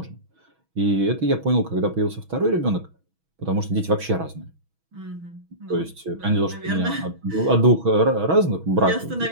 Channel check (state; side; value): late; left; 6.2 ms